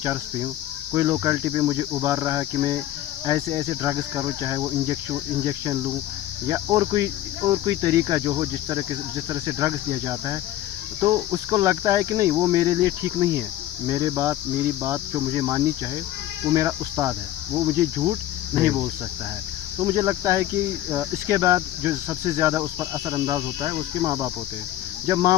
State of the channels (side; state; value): right; quieter; 13.7 dB